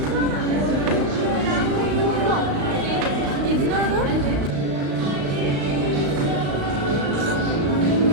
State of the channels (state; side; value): late; left; 35 ms